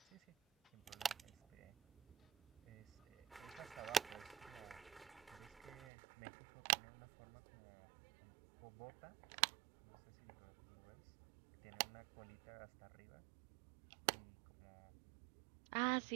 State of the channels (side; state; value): left; drops out; at 5.9 s